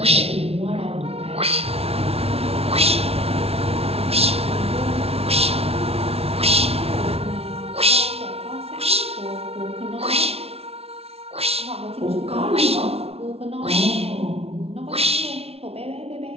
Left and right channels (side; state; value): left; late; 0.30 ms